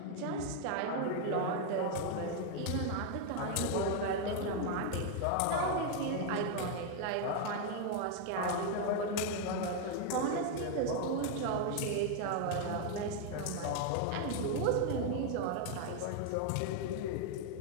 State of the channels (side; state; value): both; different; correlation 0.01